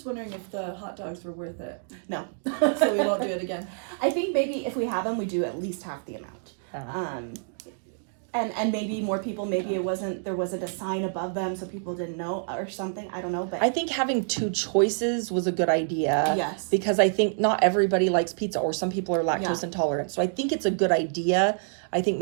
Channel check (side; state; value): left; silent; digital silence